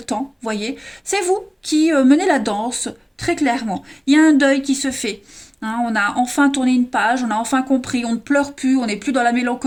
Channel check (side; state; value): both; identical; correlation 1.00